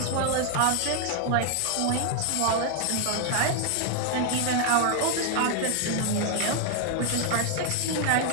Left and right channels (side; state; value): both; different; correlation 0.00